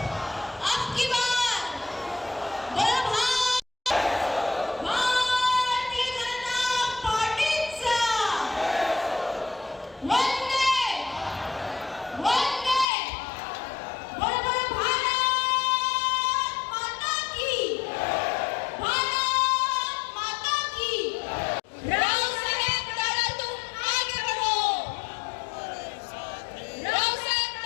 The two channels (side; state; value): right; drops out; at 12.9 s